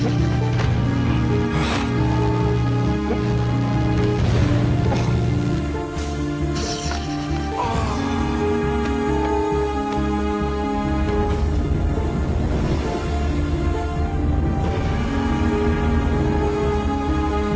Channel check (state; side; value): identical; both; correlation 1.00